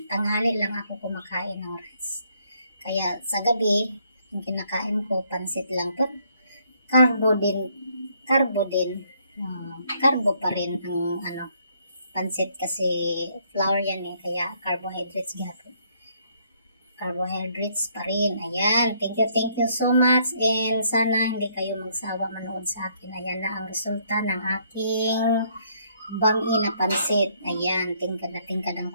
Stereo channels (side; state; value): both; inverted; correlation -0.69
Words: Tanghali lang ako kumakain ng rice. Kaya sa gabi, yung kinakain ko, pansit lang to. Carbo din. Carbo pa rin ang pansit kasi flour yan kaya carbohydrates gyapon. Carbohydrates pa rin. Ayan. Thank you so much. And sana hindi kayo magsawa manood sa akin. Ayan na ang resulta ng aking bami na pansit. Ayan. Tingkad na tingkad ang